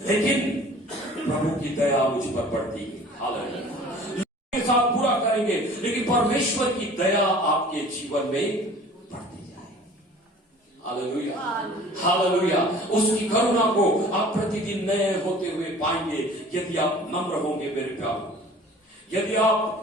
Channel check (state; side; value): normal; both; correlation 0.47